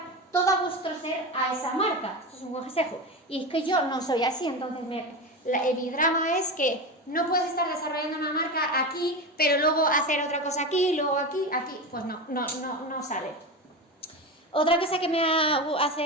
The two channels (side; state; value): both; normal; correlation 0.21